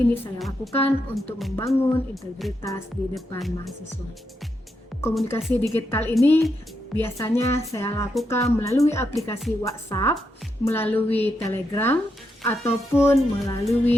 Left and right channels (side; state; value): both; normal; correlation 0.82